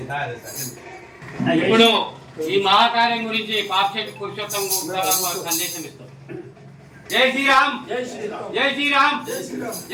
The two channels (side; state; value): both; identical; correlation 1.00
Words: ఇప్పుడు ఈ మహాకార్యం గురించి పాక్షిక పురుషోత్తం వారు సందేశం ఇస్తారు. జై శ్రీరామ్. జై శ్రీరామ్. జై శ్రీరామ్.